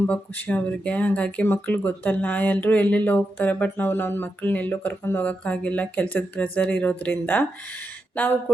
ಖುಷಿ ಅವ್ರಿಗೆ. ಹಾಗಾಗಿ ಮಕ್ಳಿಗೆ ಗೊತ್ತಲ್ಲ, ಎಲ್ಲರೂ ಎಲ್ಲೆಲ್ಲೋ ಹೋಗ್ತಾರೆ, ಬಟ್ ನಾವು ನನ್ನ ಮಕ್ಕಳನ್ನ ಎಲ್ಲೂ ಕರ್ಕೊಂಡು ಹೋಗೋಕ್ಕಾಗಿಲ್ಲ, ಕೆಲಸದ ಪ್ರೆಸರ್ ಇರೋದ್ರಿಂದ. ನಾವು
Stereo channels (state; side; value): normal; both; correlation 0.86